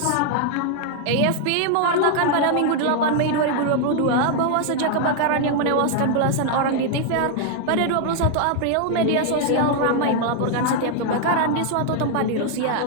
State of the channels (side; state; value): both; different; correlation 0.00